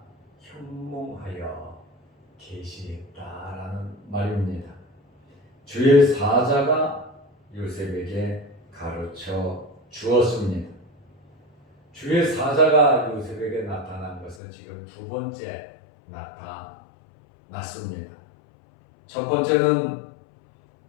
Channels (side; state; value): right; drops out; at 14.4 s